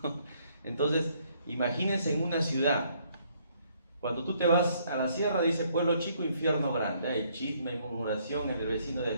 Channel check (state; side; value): inverted; both; correlation -0.67